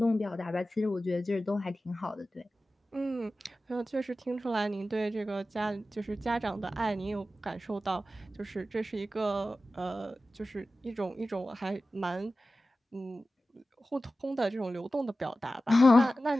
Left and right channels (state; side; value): normal; both; correlation 0.95